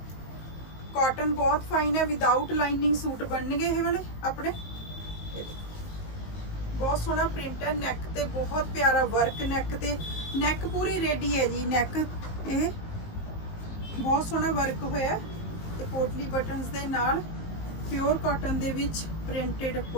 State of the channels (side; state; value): right; late; 19 ms